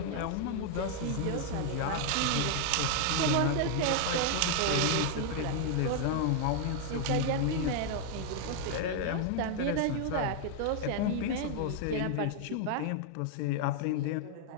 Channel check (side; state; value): both; different; correlation 0.00